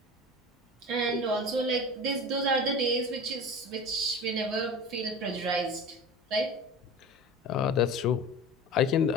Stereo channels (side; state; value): both; normal; correlation 0.34